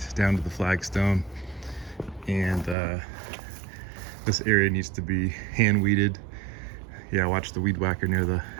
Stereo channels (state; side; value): drops out; left; at 2.8 s